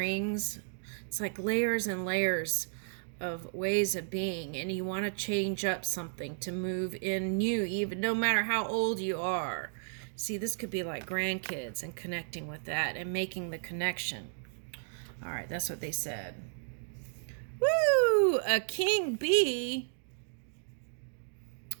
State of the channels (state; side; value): silent; left; digital silence